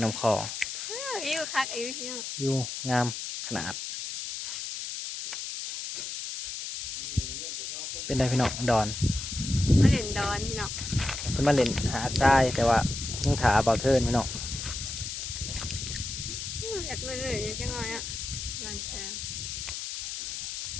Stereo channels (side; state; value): left; noise; hiss, 6 dB below the sound